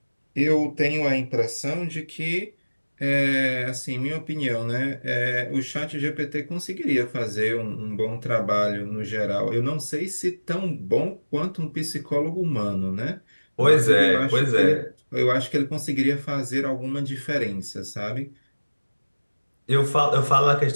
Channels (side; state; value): both; inverted; correlation -1.00